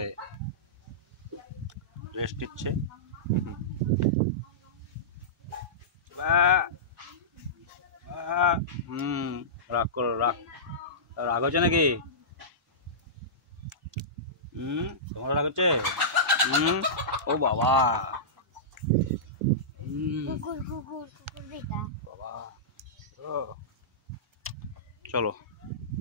রেস্ট নিচ্ছে। রাগ করো, রাগ রাগ হচ্ছে নাকি? তোমার রাগ হচ্ছে? ও বাবা, বাবা চলো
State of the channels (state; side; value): normal; both; correlation -0.18